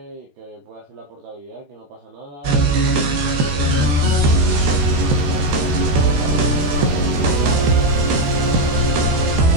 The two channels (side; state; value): left; late; 13 ms